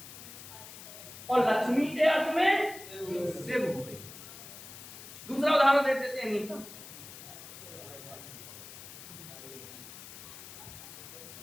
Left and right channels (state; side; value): noise; left; hiss, 14 dB below the sound